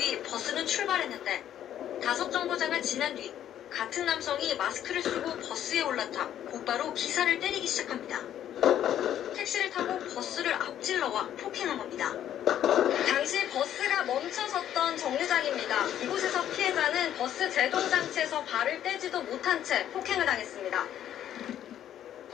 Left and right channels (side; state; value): right; quieter; 10.9 dB